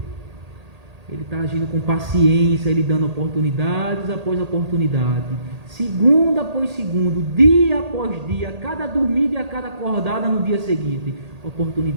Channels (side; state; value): left; late; 1.8 ms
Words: Ele está agindo com paciência, Ele dando oportunidades após oportunidade, segundo após segundo, dia após dia, cada dormida e a cada acordada no dia seguinte,